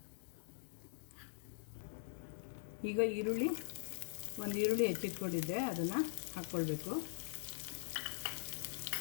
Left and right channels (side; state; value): right; silent; digital silence